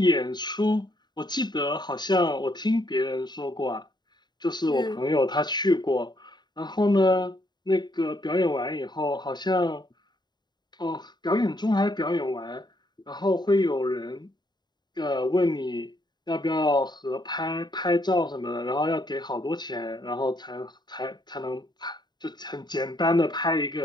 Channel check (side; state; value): right; late; 0.21 ms